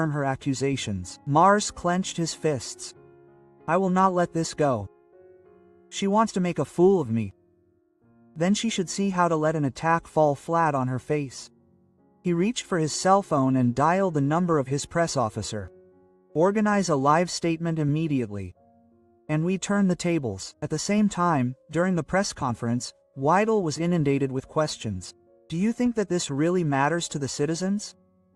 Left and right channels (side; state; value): both; identical; correlation 1.00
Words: her accusations." Merz clenched his fists. "I will not let this go. She wants to make a fool of me. Then she should see how to let an attack fall flat on her face." He reached for his cell phone and dialed the number of his press officer. Organize a live statement immediately. And we turn the tables. At the same time, during the press conference, Weidel was inundated with questions. Do you think that this really matters to the citizens?